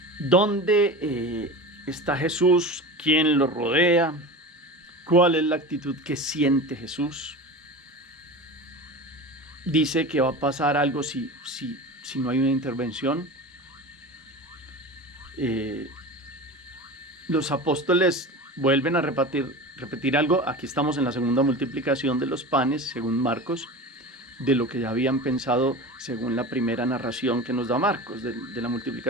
¿Dónde está Jesús? ¿Quién lo rodea? ¿Cuál es la actitud que siente Jesús? Dice que va a pasar algo si no hay una intervención. Los apóstoles vuelven a repetir algo. Aquí estamos en la segunda multiplicación de los panes, según Marcos, de lo que ya habían pensado según la primera narración que nos da Marcos de la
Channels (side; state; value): both; normal; correlation 0.31